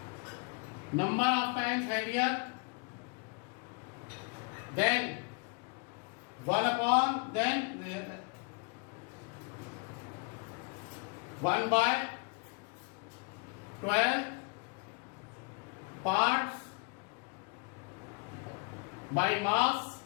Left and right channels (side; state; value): right; quieter; 34.6 dB